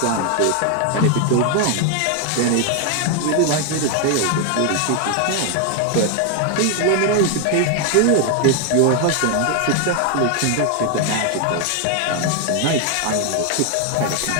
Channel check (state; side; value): different; both; correlation 0.00